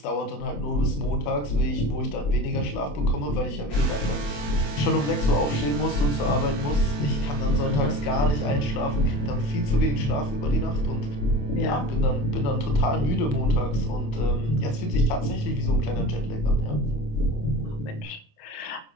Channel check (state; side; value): late; right; 28 ms